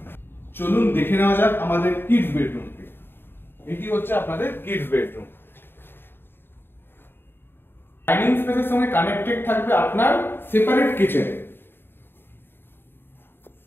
চলুন দেখে নেওয়া যাক আমাদের কিডস বেডরুমকে। এটি হচ্ছে আপনাদের কিডস বেডরুম। ডাইনিং স্পেসের সঙ্গে কানেক্টেড থাকবে আপনার সেপারেট কিচেন।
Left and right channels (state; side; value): late; right; 0.10 ms